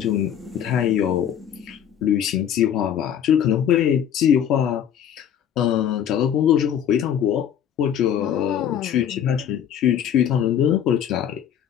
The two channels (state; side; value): quieter; right; 9.3 dB